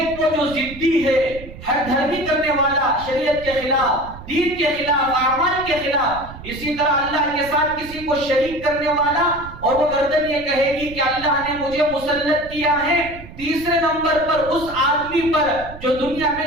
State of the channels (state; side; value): noise; right; rumble, 15 dB below the sound